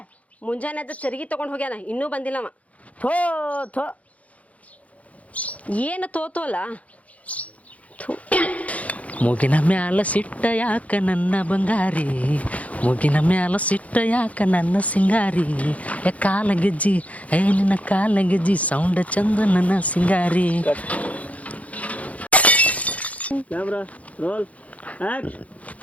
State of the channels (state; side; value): late; right; 0.068 ms